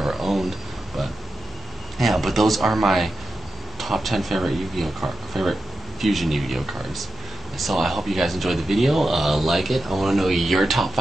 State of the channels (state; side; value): normal; both; correlation 0.90